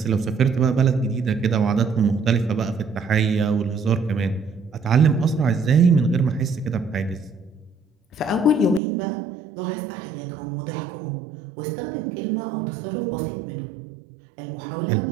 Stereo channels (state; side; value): drops out; left; at 8.8 s